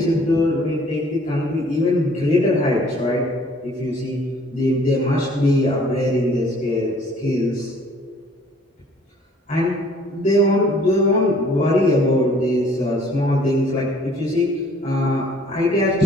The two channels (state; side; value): normal; both; correlation 0.56